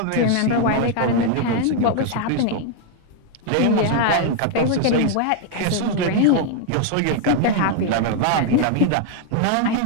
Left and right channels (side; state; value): both; different; correlation 0.00